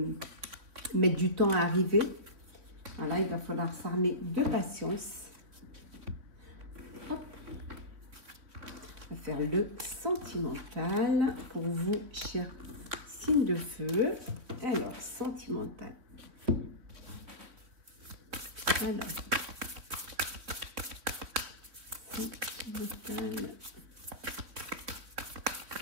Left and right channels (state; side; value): late; left; 3.7 ms